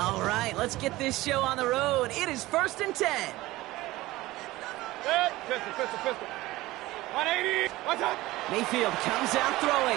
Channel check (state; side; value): quieter; left; 18.3 dB